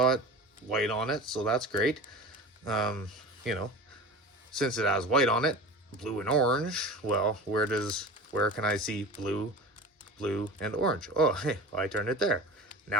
white on it, so that's great. You know, since it has white on it, blue and orange, well, where can I see blue, and orange? Oh, hey, I turned it there.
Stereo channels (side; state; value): both; normal; correlation 0.34